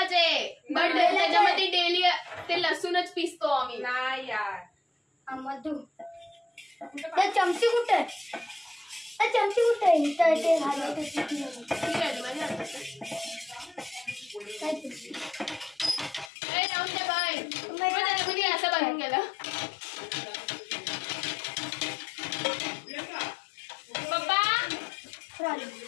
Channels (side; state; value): right; drops out; at 16.3 s